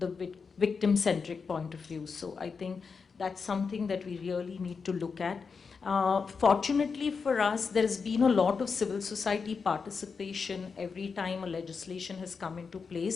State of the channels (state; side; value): quieter; right; 5.3 dB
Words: victim-centric point of view. So I think that's something that we really need to look at. Fortunately for us, there's been a lot of civil society participation every time a legislation has come into